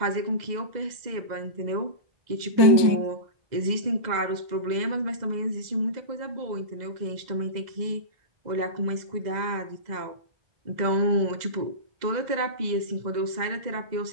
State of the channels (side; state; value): left; late; 2.0 ms